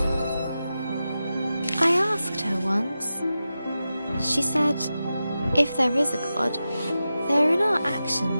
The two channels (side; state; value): both; inverted; correlation -0.92